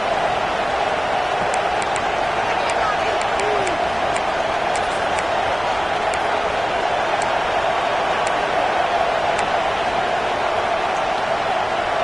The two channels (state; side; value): noise; left; rumble, 20 dB below the sound